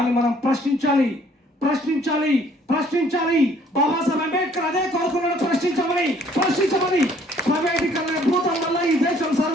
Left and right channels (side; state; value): both; normal; correlation 0.60